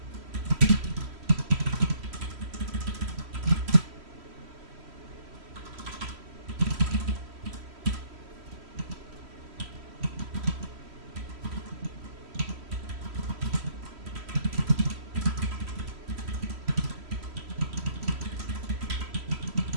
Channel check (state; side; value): late; left; 3.1 ms